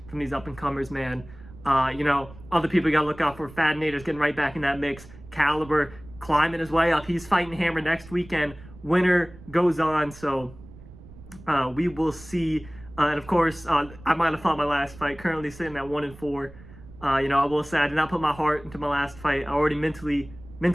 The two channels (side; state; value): right; noise; rumble, 19 dB below the sound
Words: from these up-and-comers, man. Other people you got to look out for. Fadinator's getting right back in that mix. Caliber climbing his way up. He's fighting Hammer next weekend. Winner goes on, so... we will see, and of course, I might have fought my last fight. Currently sitting at 1-4. I will say I did not put my heart into my last fight. I already mentally